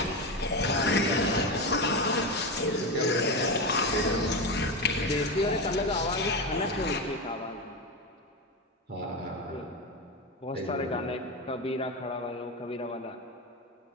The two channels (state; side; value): normal; both; correlation 0.17